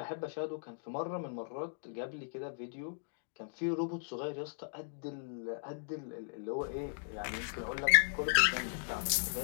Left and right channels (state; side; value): silent; right; digital silence